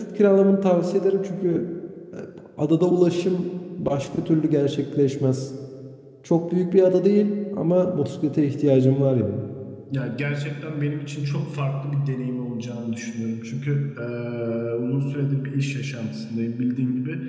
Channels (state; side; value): identical; both; correlation 1.00